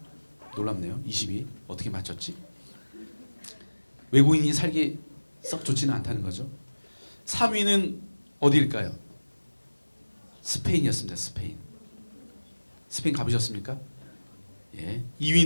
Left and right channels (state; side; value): inverted; both; correlation -1.00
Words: 놀랍네요. 20위. 어떻게 맞췄지? 외국인이 살기 썩 좋지는 않다는 거죠. 3위는 어디일까요? 스페인이었습니다. 스페인. 스페인 가보셨습니까?